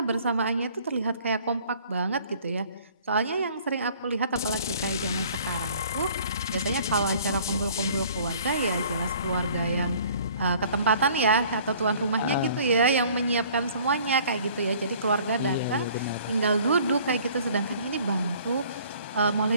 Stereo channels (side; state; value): both; inverted; correlation -0.54